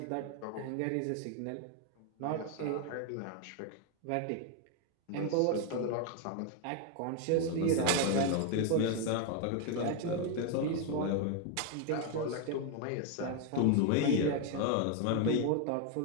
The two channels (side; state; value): both; different; correlation 0.01